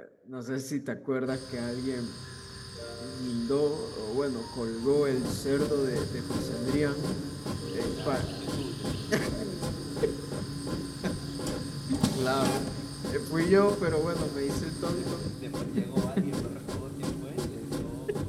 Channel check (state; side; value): identical; both; correlation 1.00